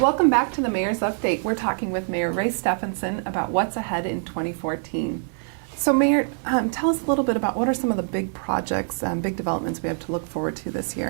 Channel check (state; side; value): silent; left; 62 dB below the other